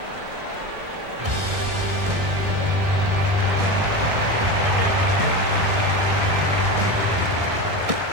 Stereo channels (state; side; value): late; left; 1.6 ms